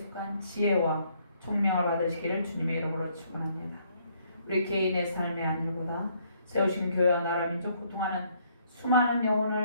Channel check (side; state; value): both; inverted; correlation -0.68